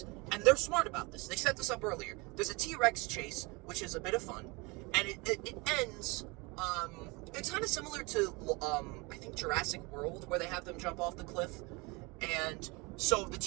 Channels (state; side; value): quieter; left; 26.6 dB